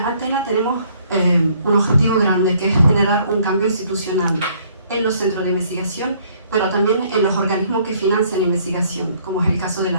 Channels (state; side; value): inverted; both; correlation -0.62